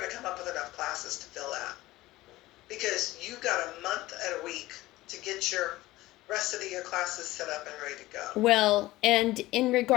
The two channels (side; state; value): right; quieter; 17.8 dB